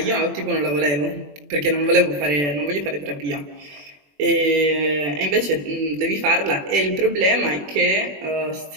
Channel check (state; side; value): late; left; 21 ms